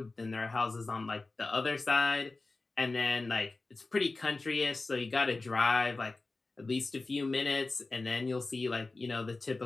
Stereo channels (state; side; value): quieter; right; 3.4 dB